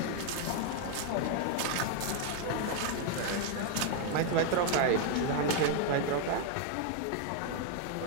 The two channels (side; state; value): both; different; correlation 0.00